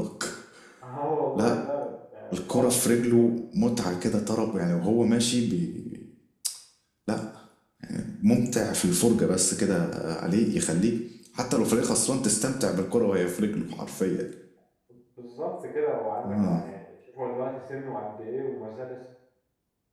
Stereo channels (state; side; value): identical; both; correlation 1.00